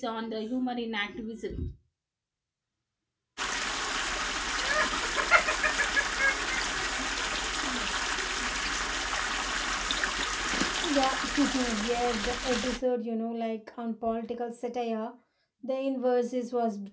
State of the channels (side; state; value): both; identical; correlation 1.00